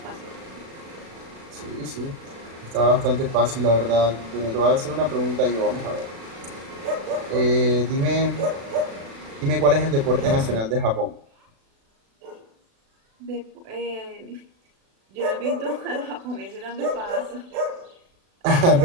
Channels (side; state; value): left; late; 36 ms